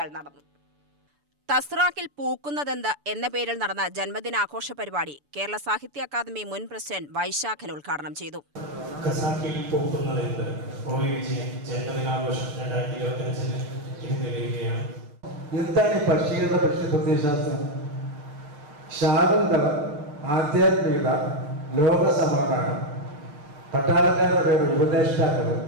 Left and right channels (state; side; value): late; left; 6.9 ms